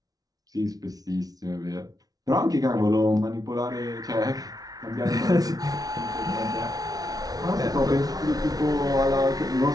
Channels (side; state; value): left; late; 0.18 ms